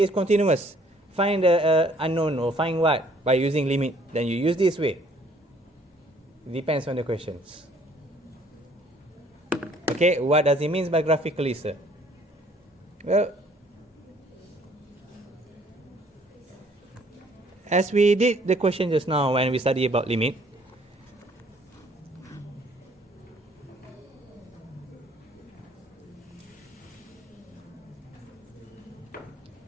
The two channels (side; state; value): both; normal; correlation 0.60